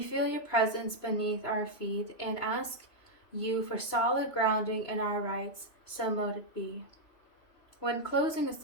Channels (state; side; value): late; right; 3.0 ms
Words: feel your presence beneath our feet and ask you for solid grounding in our rights, so mote it be. When closing a